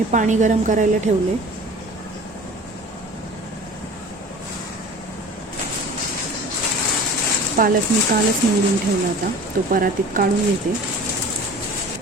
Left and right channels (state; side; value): normal; both; correlation 0.41